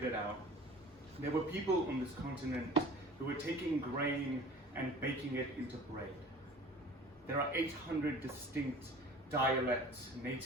it out, there were people on this continent who were taking grain and baking it into bread. There are 800 distinct dialects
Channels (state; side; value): normal; both; correlation 0.43